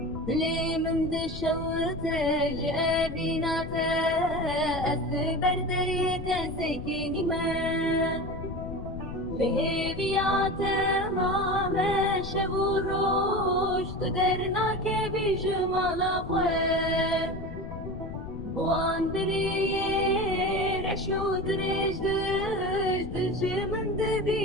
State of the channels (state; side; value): noise; left; rumble, 9 dB below the sound